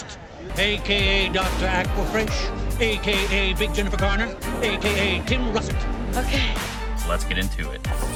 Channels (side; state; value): both; identical; correlation 1.00